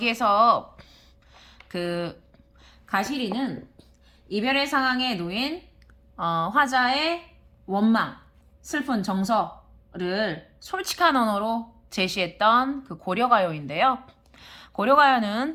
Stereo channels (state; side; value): identical; both; correlation 1.00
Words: 그 가시리는 이별의 상황에 놓인 화자의 원망, 슬픈 정서를 솔직한 언어로 제시했던 그 고려가요인데요.